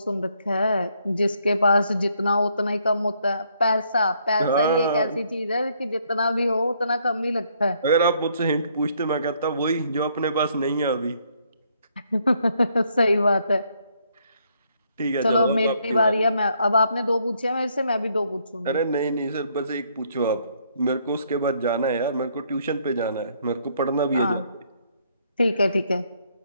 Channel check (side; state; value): both; inverted; correlation -0.70